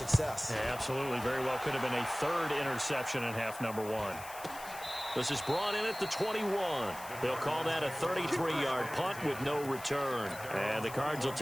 Yeah, absolutely. Very well could have been a 3rd interception in half number 1. This is brought in at the 21. They'll call that a 33-yard punt with no return. And the Cards will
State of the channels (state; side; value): noise; left; hiss, 15 dB below the sound